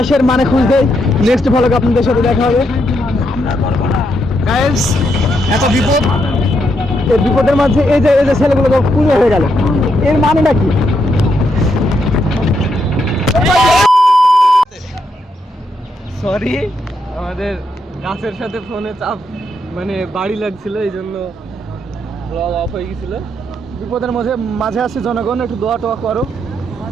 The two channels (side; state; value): both; normal; correlation 0.79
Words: মানে খুঁজতে নেক্সট ভালো আপনাদের সাথে দেখা হবে। গাইস, এত বিপদ, এই বিপদের মাঝে এই যে ছেলেগুলো পুরো হয়ে গেল, এর মানেটা কি? সরি, আমাদের গাছের সাথে ফোনে চাপ মানে বাড়ি লাগছিল, এই জন্য ব্লগ অফ হয়ে গেছিল। বিপদের মাঝে আছে জনগণ, একটু দোয়া টোয়া করো।